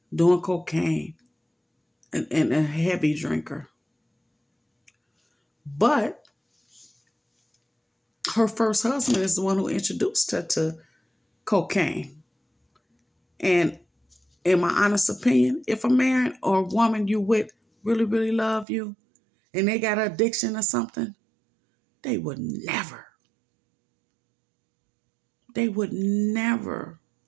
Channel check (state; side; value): drops out; left; at 18.7 s